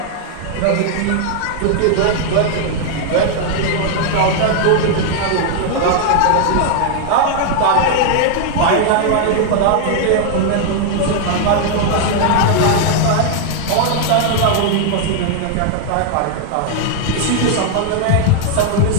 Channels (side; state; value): both; different; correlation 0.00